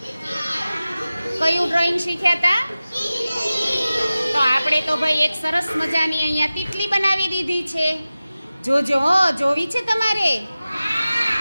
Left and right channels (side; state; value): both; inverted; correlation -0.96